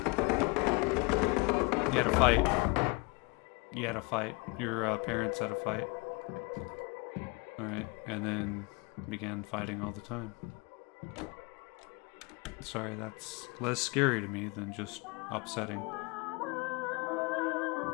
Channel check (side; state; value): right; quieter; 28.1 dB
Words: You had a fight. You had a fight. Your parents had a fight. Alright. and then began fighting all the time. Sorry, that's less scary to me than just upsetting.